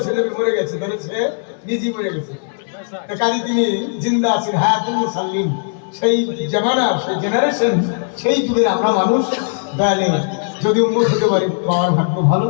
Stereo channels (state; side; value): silent; right; digital silence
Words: নবী মরে গেছে, তাহলে সে নিজেই মরে গেছে। কাজে তিনি জিন্দা আছেন, হায়াতুল মুরসালিন, সেই জামানা, সেই জেনারেশন, সেই যুগের আমরা মানুষ। দয়ালে যদি উন্মত হতে পারি আমার ভাগ্য ভালো,